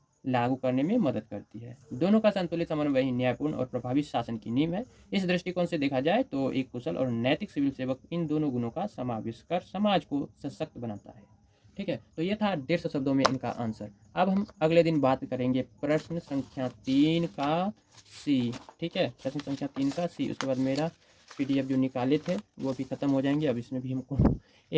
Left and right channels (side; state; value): both; identical; correlation 1.00